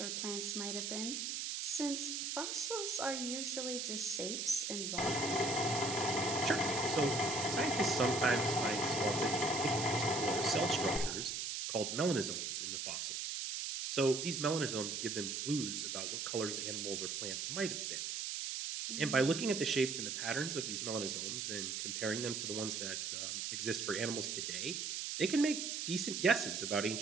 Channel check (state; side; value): noise; right; hiss, 2 dB below the sound